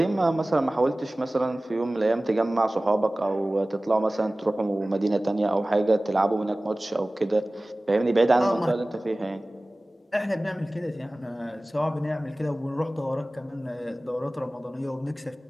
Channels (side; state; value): both; normal; correlation 0.98